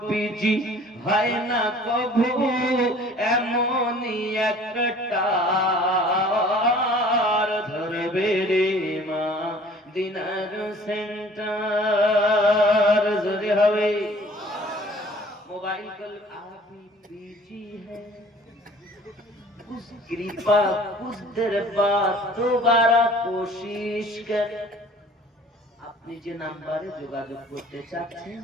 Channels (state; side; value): normal; both; correlation 0.51